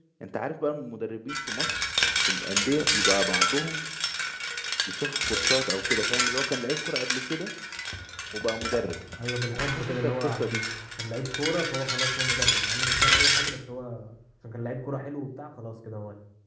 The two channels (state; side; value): identical; both; correlation 1.00